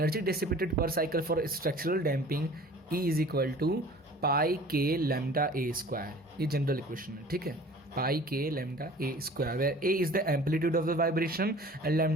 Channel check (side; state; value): both; normal; correlation 0.46